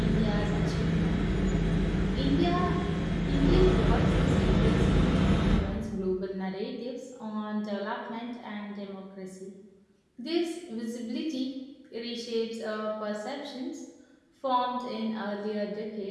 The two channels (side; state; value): both; identical; correlation 1.00